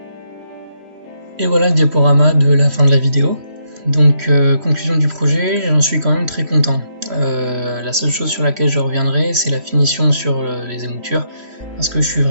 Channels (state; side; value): late; left; 3.1 ms